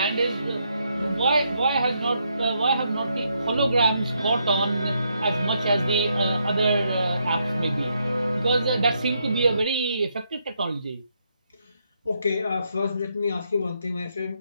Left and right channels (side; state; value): both; inverted; correlation -0.77